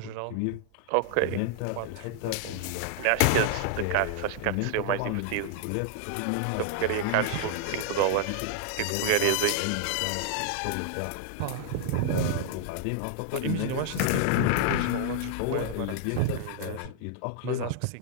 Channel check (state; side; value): different; both; correlation 0.00